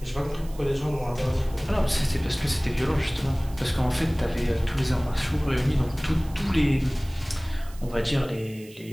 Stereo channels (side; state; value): right; noise; hiss, 22 dB below the sound